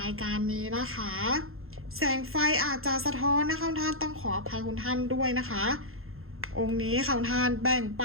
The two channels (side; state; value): left; late; 0.61 ms